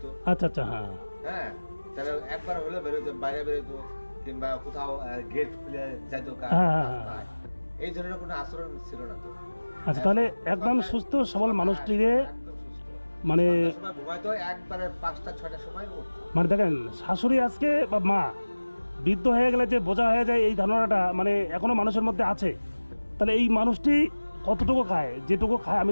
আচ্ছা আচ্ছা, হ্যাঁ হ্যাঁ, তাহলে একবার হলে বেরোতো, বাইরে বেরোতো, কিংবা কোথাও গেট খুলে যাইতো। হ্যাঁ, হ্যাঁ, হ্যাঁ। এই ধরনের কোনো আচরণ ছিল না তো। আচ্ছা, তাহলে একদম সুস্থ সবল মানুষটিরে একদম সুস্থ। মানে সন্ধ্যার সময় ঘুমাইতো, একবারে 5টা-6টার সময় উঠতো। মানে দেখেন, শাশুড়ি আজকে বা মা বৃদ্ধ হয়ে গেলে যে বোঝা হয়ে যায়, এই ধারণাটা মানে এখনো মানুষের মধ্যে আছে। তাহলে এই মানুষটি কতটুকু খায়, যেটুকু খায় আমি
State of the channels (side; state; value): both; inverted; correlation -1.00